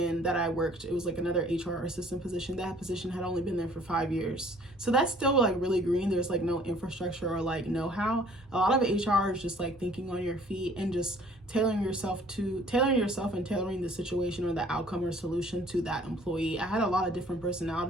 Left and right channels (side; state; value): both; normal; correlation 0.56